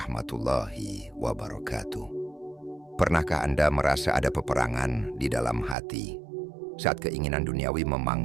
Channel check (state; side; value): drops out; left; at 5.8 s